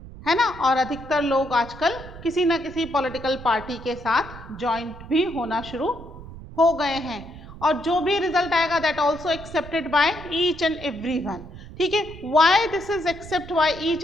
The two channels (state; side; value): noise; right; rumble, 15 dB below the sound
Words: है ना. और अधिकतर लोग आजकल किसी ना किसी पॉलिटिकल पार्टी के साथ ज्वाइंट भी होना शुरू हो गए हैं, और जो भी रिजल्ट आएगा that also accepted by each and everyone. ठीक है, why this is accept by each